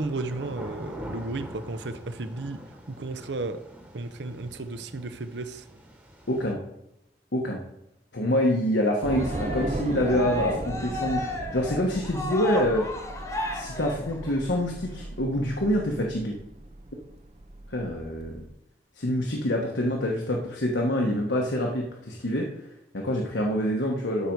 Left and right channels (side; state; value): both; normal; correlation 0.45